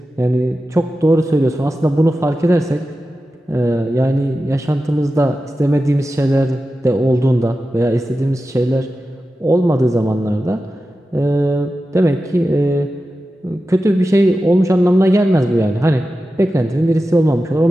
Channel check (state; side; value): normal; both; correlation 0.93